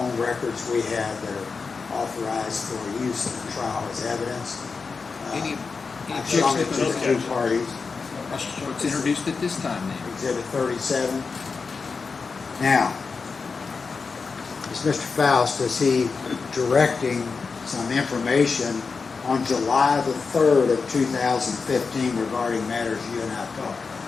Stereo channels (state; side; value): quieter; right; 4.8 dB